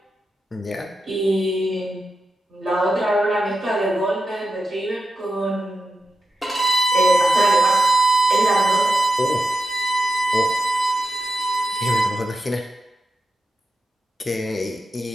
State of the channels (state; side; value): normal; both; correlation 0.88